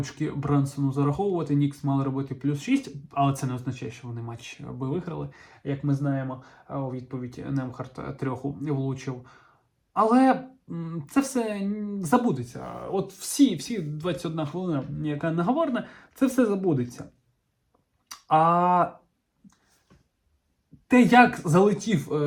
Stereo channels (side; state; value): both; identical; correlation 1.00